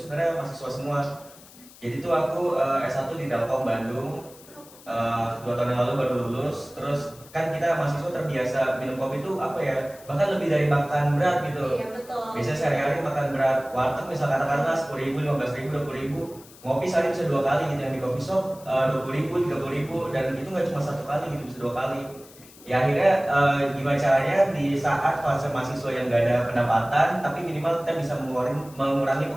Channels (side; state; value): left; noise; hiss, 22 dB below the sound